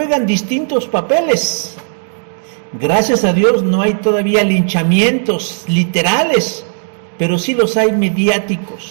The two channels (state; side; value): silent; left; digital silence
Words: distintos papeles. Gracias a Dios no hay todavía linchamientos literales, pero sí los hay